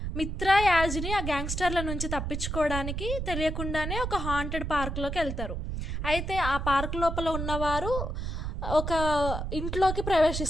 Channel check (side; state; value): right; noise; rumble, 4 dB below the sound